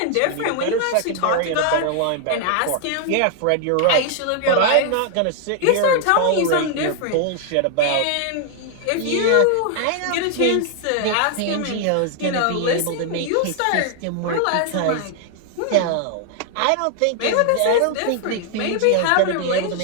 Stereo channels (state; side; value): different; both; correlation 0.00